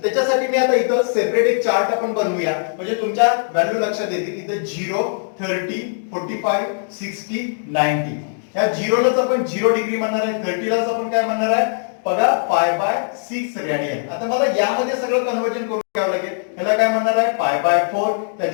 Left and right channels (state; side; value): silent; right; digital silence